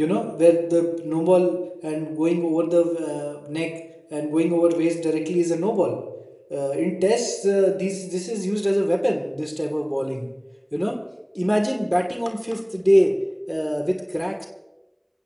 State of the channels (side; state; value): both; identical; correlation 1.00